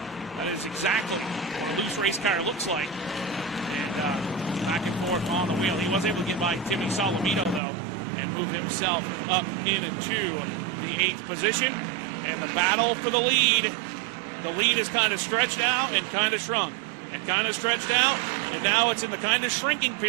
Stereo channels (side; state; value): left; drops out; at 7.6 s